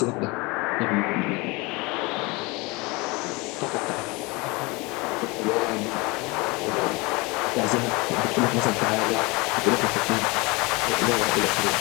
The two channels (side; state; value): right; quieter; 25.7 dB